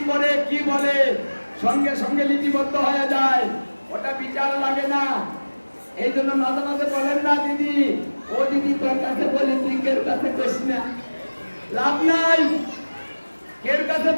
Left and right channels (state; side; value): inverted; both; correlation -1.00